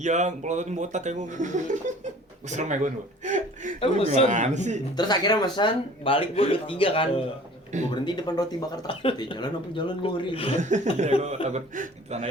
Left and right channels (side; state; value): both; normal; correlation 0.48